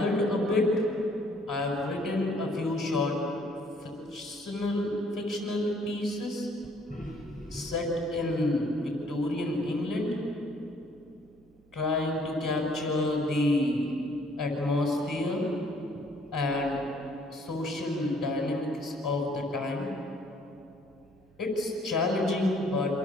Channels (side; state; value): right; noise; hum, 29 dB below the sound